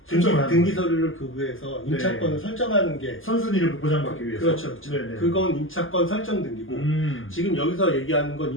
등기 서류를 교부해서 임차권을 설정하는 게 선순위를 보장받기 위해서. 그렇죠. 네네. 그건 임차권 설정 등기고 지금 여기서 얘기하는 건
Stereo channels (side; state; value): right; late; 0.59 ms